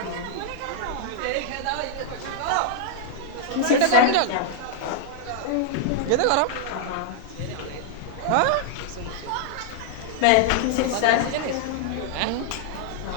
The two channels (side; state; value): both; different; correlation -0.01